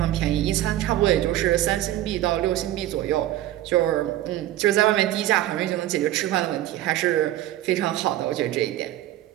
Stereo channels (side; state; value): left; quieter; 14.0 dB